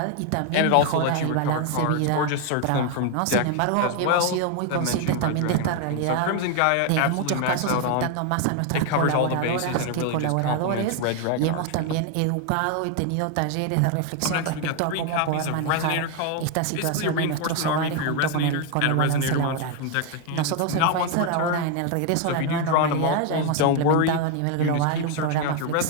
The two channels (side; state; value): both; different; correlation 0.01